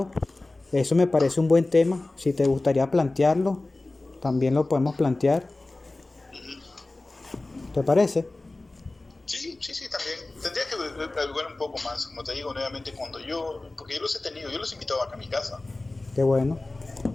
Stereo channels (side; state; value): right; quieter; 3.0 dB